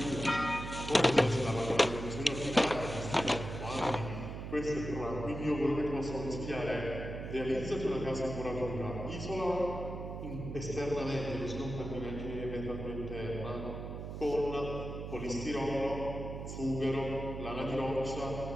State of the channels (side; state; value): right; noise; hum, 7 dB below the sound